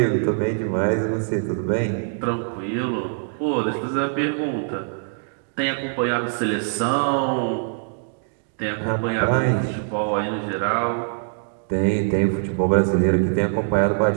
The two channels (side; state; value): left; silent; digital silence